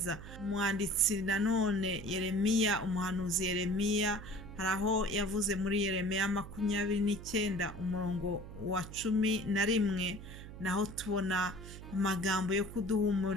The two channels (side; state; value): right; noise; hum, 13 dB below the sound